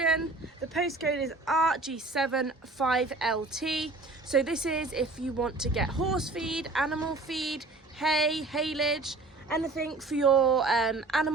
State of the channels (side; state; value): left; quieter; 3.4 dB